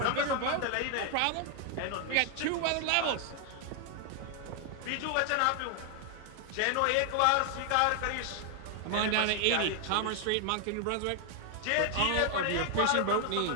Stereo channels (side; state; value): both; different; correlation 0.00